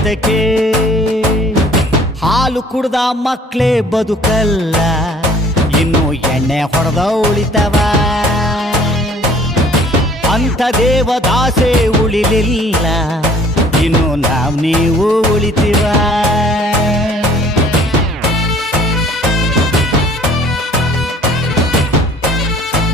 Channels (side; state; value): both; normal; correlation 0.54